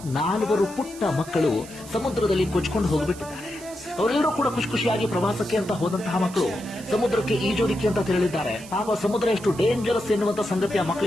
4 ಪುಟ್ಟ ಮಕ್ಕಳು ಸಮುದ್ರದಲ್ಲಿ ಕೊಚ್ಕೊಂಡು ಹೋಗಿಬಿಟ್ಟಿದ್ದಾರೆ. ಅವರೆಲ್ಲರೂ ಕೂಡ ಖುಷಿಯಾಗಿ ಪ್ರವಾಸಕ್ಕೆ ಅಂತ ಹೋದಂತಹ ಮಕ್ಕಳು ಸಮುದ್ರಕ್ಕೆ ಈಜೋದಿಕ್ಕೆ ಅಂತ ತೆರಳಿದ್ದಾರೆ. ಪಾಪ ಸಮುದ್ರ ಎಷ್ಟು ಡೇಂಜರಸ್ ಎನ್ನುವಂತ ಸಂಗತಿ ಆ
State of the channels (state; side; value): noise; right; hiss, 17 dB below the sound